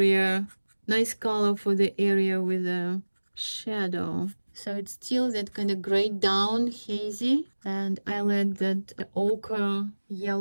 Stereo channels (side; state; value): both; inverted; correlation -1.00